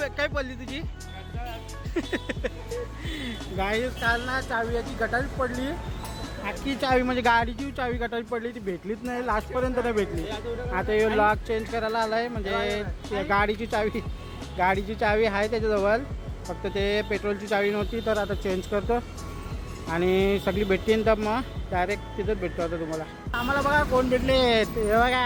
पडली तुझी? गाडी काल ना चावी याची गटारीच पडली. अख्खी चावी म्हणजे गाडीची चावी गटारी पडली, ती भेटलीच नाही, लास्टपर्यंत नाही भेटली. आता हे लॉक चेंज करायला आला आहे, म्हणजे गाडीची चावी आहे त्याच्याजवळ, फक्त ते पेट्रोलची चावी नव्हती. तर आता चेंज करतो आणि सगळी भेटतील, तर मग डायरेक्ट तिथंच भेटतो आता तुम्हाला. आम्हाला बघा कोण भेटले, हे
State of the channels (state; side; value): identical; both; correlation 1.00